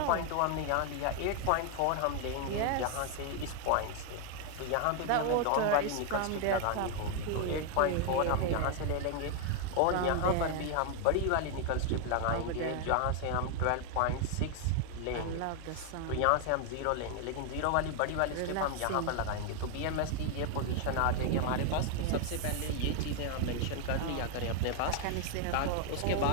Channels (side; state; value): both; different; correlation 0.00